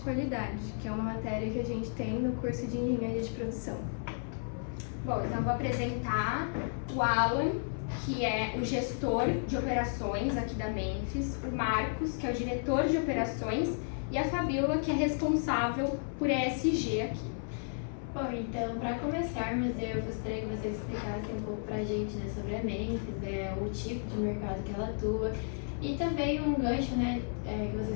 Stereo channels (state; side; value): silent; right; 56 dB below the other